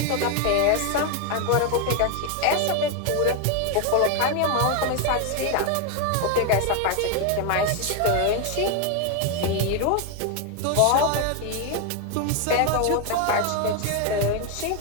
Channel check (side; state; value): both; different; correlation 0.01